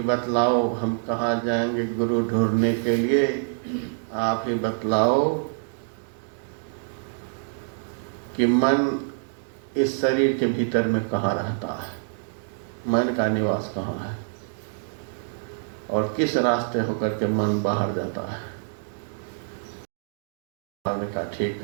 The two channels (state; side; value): silent; left; digital silence